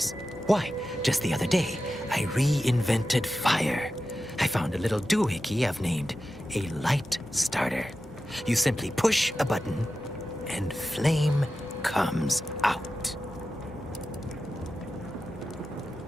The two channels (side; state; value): both; normal; correlation 0.92